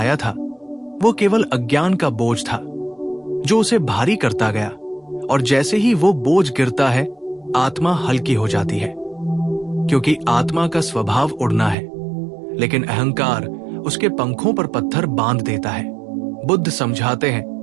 था वो केवल अज्ञान का बोझ था जो उसे भारी करता गया, और जैसे ही वो बोझ गिरता है आत्मा हल्की हो जाती है, क्योंकि आत्मा का स्वभाव उड़ना है, लेकिन अहंकार उसके पंखों पर पत्थर बांध देता है। बुद्ध समझाते हैं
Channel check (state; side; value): drops out; left; at 11.8 s